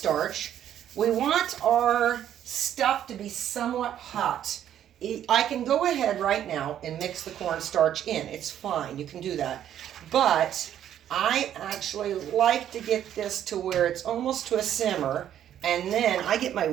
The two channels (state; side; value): quieter; left; 10.6 dB